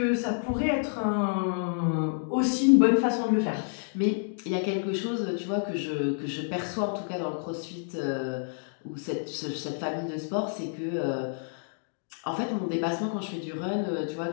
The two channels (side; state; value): right; silent; digital silence